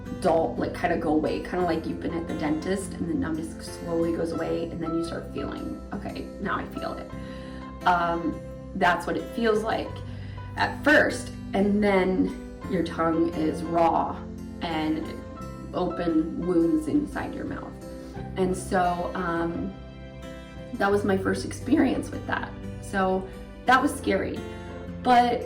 kind of go away, kind of like you've been at the dentist and the numbness slowly goes away, and then you start feeling, okay, now I feel it. That's what it feels like at first, and then your tongue is raw and open wounds inside your mouth. And so that was my first experience with that. So that was scary.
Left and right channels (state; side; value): identical; both; correlation 1.00